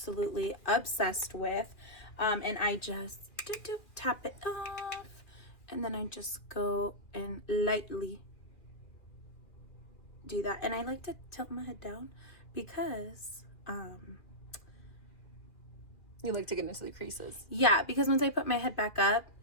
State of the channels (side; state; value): right; late; 2.4 ms